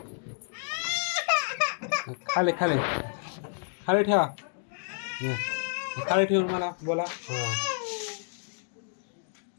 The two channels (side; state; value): right; silent; digital silence